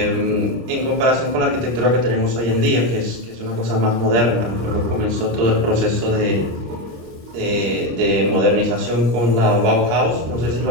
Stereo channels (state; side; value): late; left; 25 ms